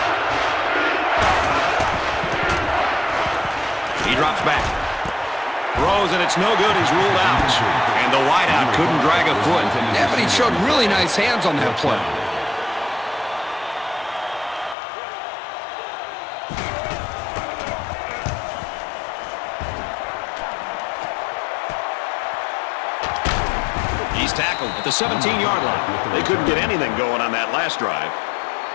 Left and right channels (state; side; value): drops out; right; at 14.8 s